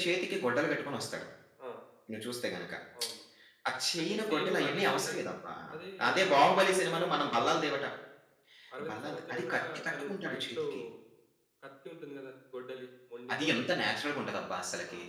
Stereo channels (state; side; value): identical; both; correlation 1.00